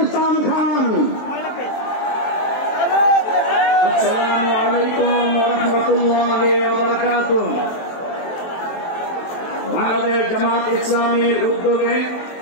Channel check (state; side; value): late; right; 23 ms